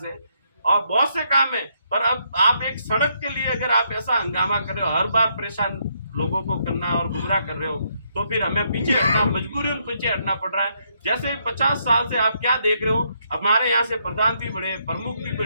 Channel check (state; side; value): inverted; both; correlation -0.74